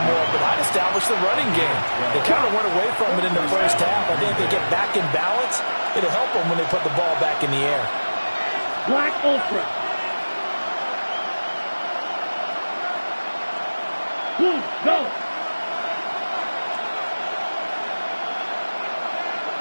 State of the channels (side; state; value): both; inverted; correlation -1.00